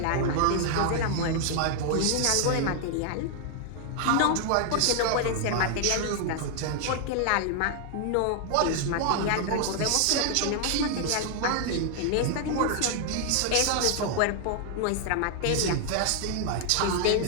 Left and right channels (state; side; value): different; both; correlation 0.00